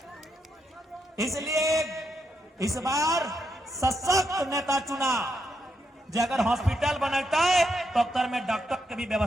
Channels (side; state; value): both; normal; correlation 0.80